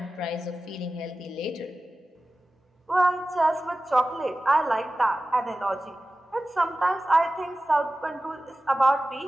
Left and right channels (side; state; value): both; normal; correlation 0.95